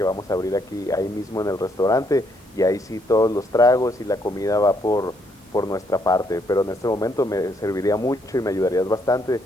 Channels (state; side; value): normal; both; correlation 0.72